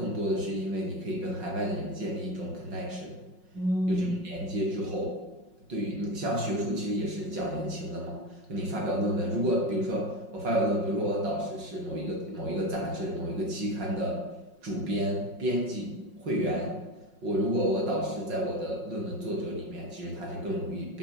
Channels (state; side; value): late; left; 5.5 ms